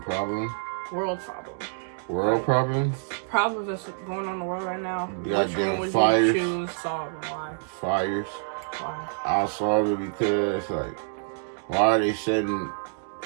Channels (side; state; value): left; silent; digital silence